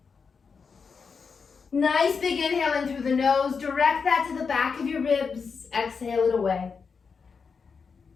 Nice big inhale in through the nose. Direct that to the back of your ribs. Exhale it away.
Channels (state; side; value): quieter; right; 5.5 dB